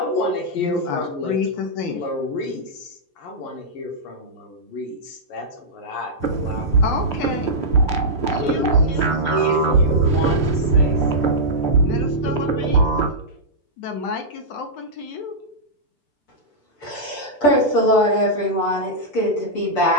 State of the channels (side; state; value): right; late; 6.8 ms